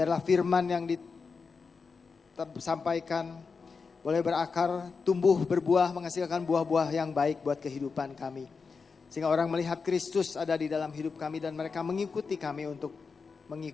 firman yang disampaikan boleh berakar, tumbuh, berbuah, menghasilkan buah-buah yang baik buat kehidupan kami. Sehingga orang melihat Kristus ada di dalam hidup kami dan mereka mengikuti kami untuk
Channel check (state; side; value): quieter; right; 5.0 dB